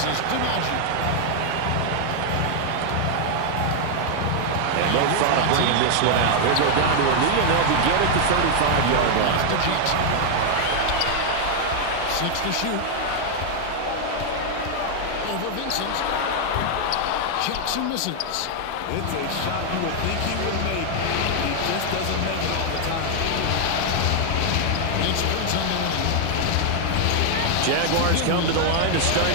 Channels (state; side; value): different; both; correlation 0.00